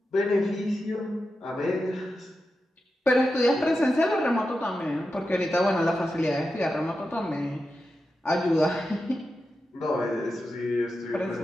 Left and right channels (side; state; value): both; normal; correlation 0.90